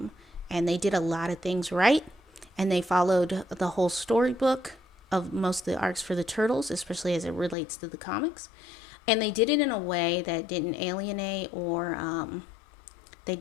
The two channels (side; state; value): right; drops out; at 7.6 s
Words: And they did a lot of things right. And they followed the whole storybook of most of the arcs for the Turtles, especially as it relates to the comics. And they did it in a way that didn't alienate or they